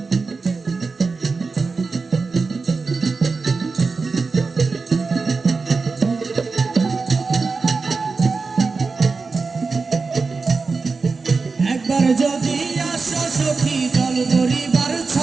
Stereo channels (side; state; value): left; quieter; 4.3 dB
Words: একবার যদি আসো সখী জল ধরিবার